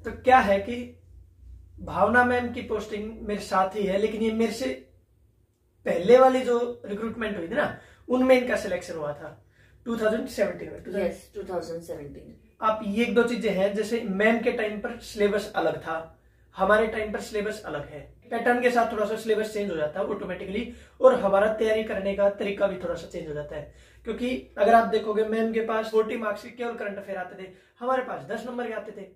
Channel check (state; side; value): identical; both; correlation 1.00